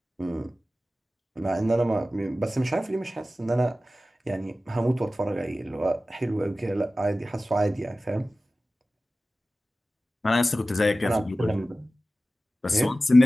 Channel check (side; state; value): both; normal; correlation 0.95